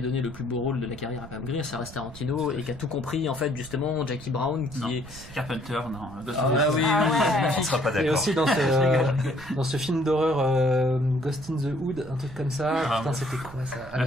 le plus beau rôle de la carrière à Pam Grier, ça reste Tarantino, et qui a tout compris, en fait, justement, Jackie Brown, qui est... Carpenter, non. On sera pas d'accord. Et aussi dans ce film d'horreur Ghost in the Hood, un truc comme ça, putain, c'était quoi ça?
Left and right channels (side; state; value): right; noise; rumble, 17 dB below the sound